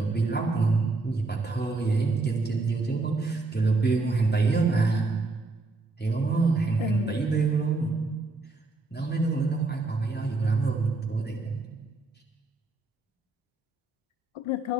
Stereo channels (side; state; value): left; quieter; 3.4 dB